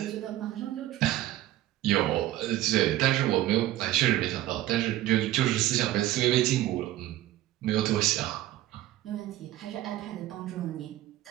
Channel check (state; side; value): quieter; left; 14.6 dB